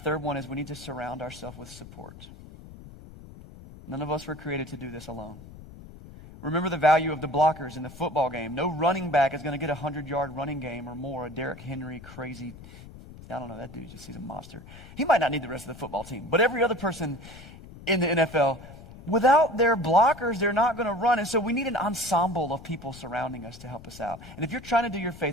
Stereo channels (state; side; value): noise; left; rumble, 17 dB below the sound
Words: one is we need to surround ourselves with support. None of us were created to do this alone. Remember the value of the blockers in the football game. No running back is going to get a 100-yard running game or more. A Derrick Henry crazy, I don't know, that dude just he's a monster. He might not need the rest of the football team. But every other person in the NFL, without their blockers, they're not going to run. And so we need an ensemble of people surrounding us to help us out. And if you're trying to do your